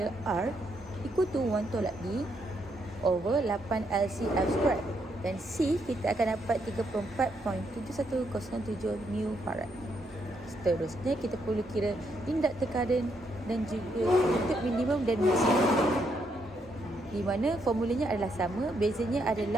R equal to 1 tolak D over 8 LCF2 dan C kita akan dapat 34.7107 mil farad. Seterusnya kita perlu kira inductor current dan juga untuk minimum dan maksimum, di mana formulanya adalah sama. Bezanya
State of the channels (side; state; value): both; normal; correlation 0.76